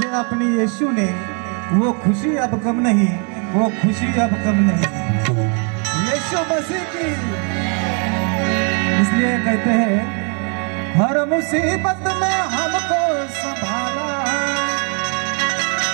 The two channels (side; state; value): left; quieter; 36.0 dB